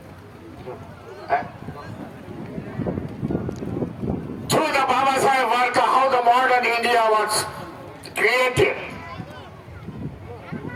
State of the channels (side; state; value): both; identical; correlation 1.00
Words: through the Baba Sahib work, how the modern India was created.